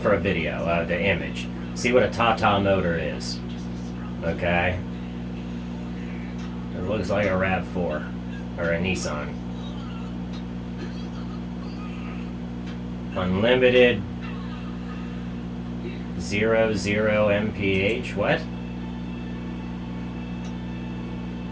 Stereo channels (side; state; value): both; identical; correlation 1.00